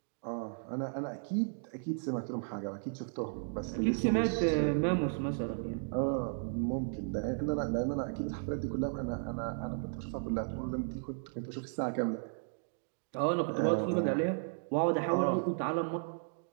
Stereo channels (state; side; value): silent; left; digital silence